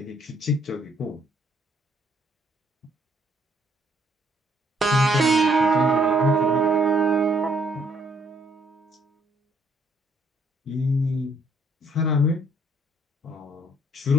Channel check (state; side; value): normal; both; correlation 0.67